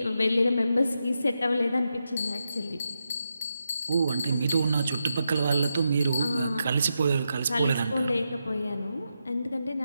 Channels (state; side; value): inverted; both; correlation -0.85